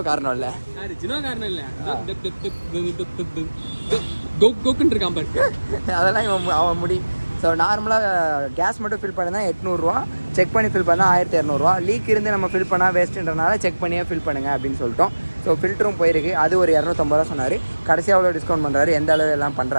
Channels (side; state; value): both; inverted; correlation -1.00